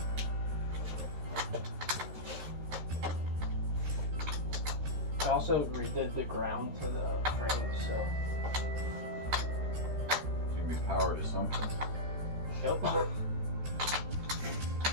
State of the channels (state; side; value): late; left; 13 ms